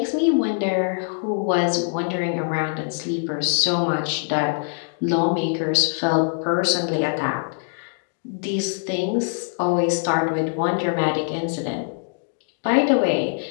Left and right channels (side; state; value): right; silent; digital silence